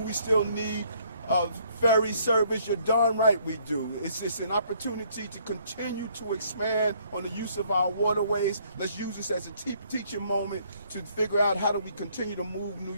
still need ferry service? You're darn right we do. It's an opportunity to continue to expand on the use of our waterways. Let's use this as a teaching moment to figure out how do we continue to move New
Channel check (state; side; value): inverted; both; correlation -0.65